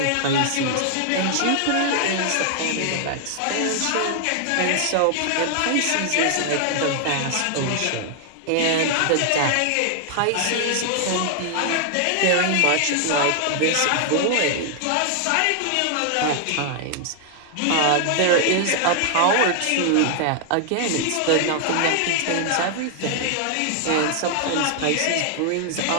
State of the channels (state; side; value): different; both; correlation 0.00